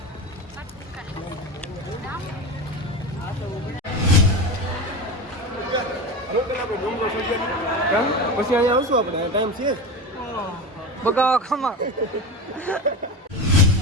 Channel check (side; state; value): both; normal; correlation 0.25